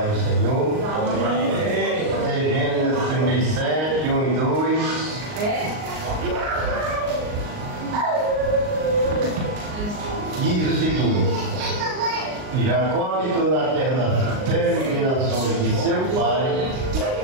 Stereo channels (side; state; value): left; late; 38 ms